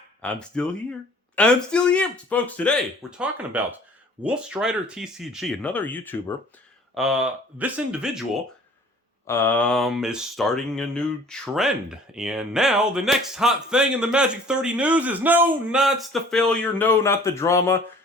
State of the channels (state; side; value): normal; both; correlation 0.51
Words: I'm still here. I'm still here. Folks, today we're talking about Wolf Strider TCG, another YouTuber. This individual is starting a new trend. And now the next hot thing in the Magic 30 news is no, not the failure, no, not the drama.